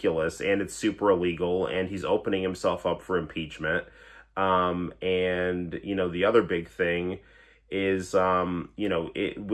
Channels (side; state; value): both; identical; correlation 1.00